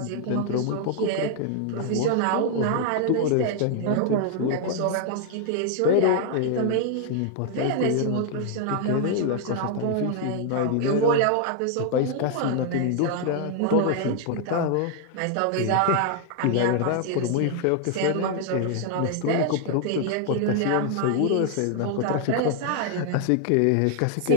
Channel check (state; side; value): different; both; correlation 0.00